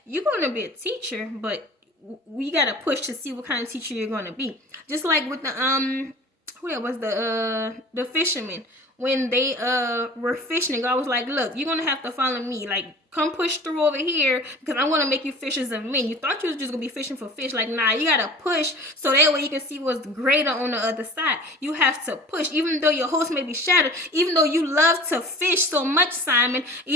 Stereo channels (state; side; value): normal; both; correlation 0.42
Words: you're going to be a teacher, but we got to push to see what kind of teacher you're going to be. Just like with the, who that was, the fishermen, when they were fishing, God was like, look, you're gonna have to follow me, like, come push through over here, because I'm gonna make you fishers of men. You thought you was just gonna be fishing for fish. Like, nah, you gotta push so that way you can see what's greater on the other side. You have to push. Even though your hopes may be shattered, even though you love to fish so much, Simon,